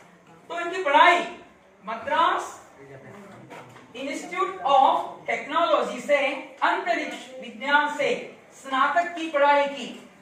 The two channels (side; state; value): both; identical; correlation 1.00